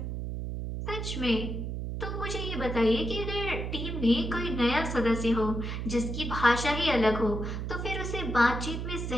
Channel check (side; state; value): right; noise; hum, 4 dB below the sound